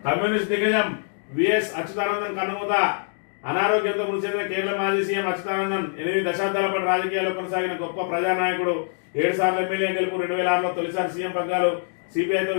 కమ్యూనిస్ట్ దిగ్గజం విఎస్ అచ్యుతానందన్ కన్నుమూత. అనారోగ్యంతో మృతి చెందిన కేరళ మాజీ సీఎం అచ్యుతానందన్ 8 దశాబ్దాల పాటు రాజకీయాల్లో కొనసాగిన గొప్ప ప్రజానాయకుడు. 7 సార్లు ఎమ్మెల్యే గెలుపు. 2006లో తొలిసారి సీఎం పగ్గాలు. సిపిఐతో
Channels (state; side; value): silent; right; 62 dB below the other